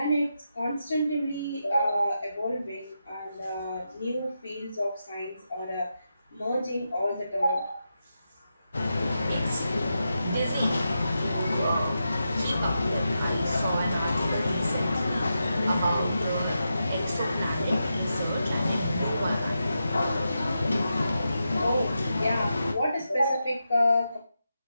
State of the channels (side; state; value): both; inverted; correlation -0.87